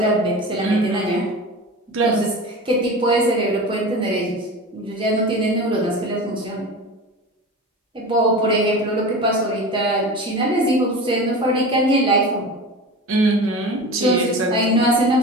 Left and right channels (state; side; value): normal; both; correlation 0.31